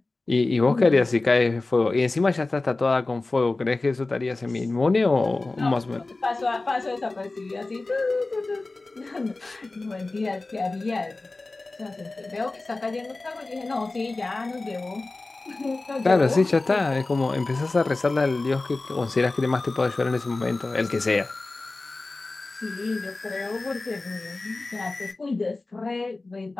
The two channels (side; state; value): right; quieter; 3.3 dB